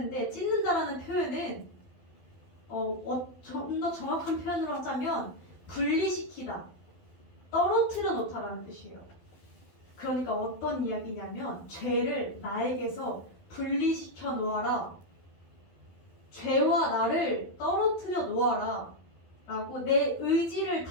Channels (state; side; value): late; right; 12 ms